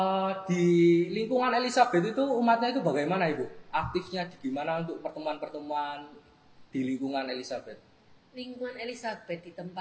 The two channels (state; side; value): identical; both; correlation 1.00